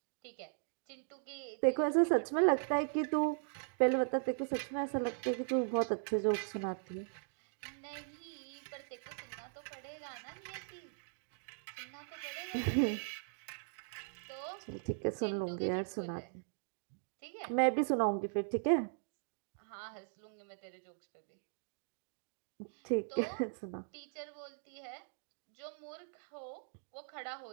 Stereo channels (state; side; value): silent; left; digital silence